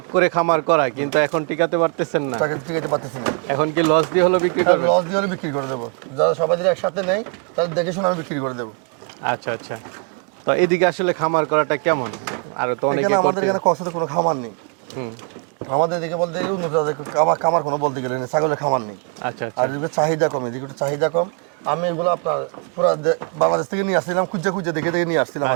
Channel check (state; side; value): quieter; left; 37.5 dB